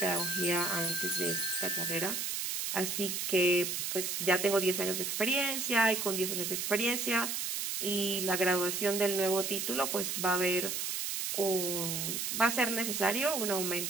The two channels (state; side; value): noise; right; hiss, 2 dB below the sound